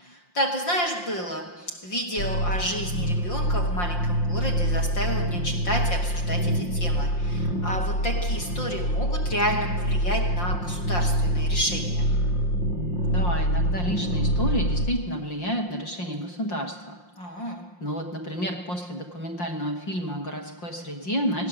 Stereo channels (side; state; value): right; late; 5.7 ms